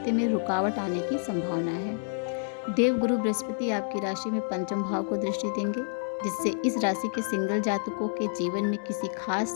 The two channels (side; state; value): right; silent; digital silence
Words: में रुकावट आने की संभावना है। देवगुरु बृहस्पति आपकी राशि में पंचम भाव को दृष्टि देंगे, जिससे इस राशि के सिंगल जातकों के जीवन में किसी खास